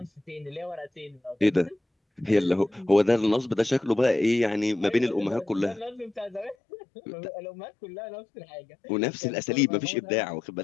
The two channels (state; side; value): drops out; right; at 6.6 s